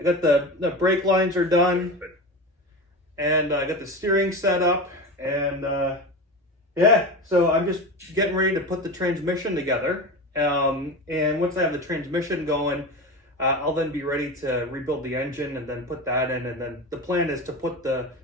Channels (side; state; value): both; normal; correlation 0.26